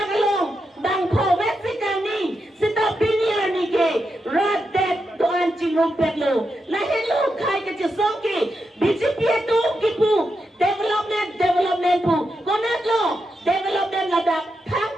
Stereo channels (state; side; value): normal; both; correlation 0.86